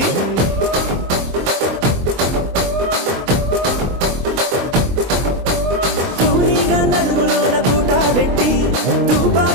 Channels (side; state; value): left; late; 23 ms